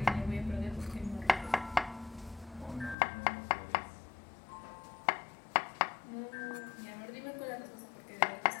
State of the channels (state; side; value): drops out; right; at 3.0 s